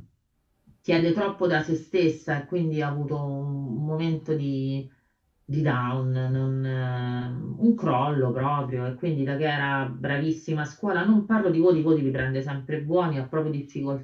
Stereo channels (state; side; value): identical; both; correlation 1.00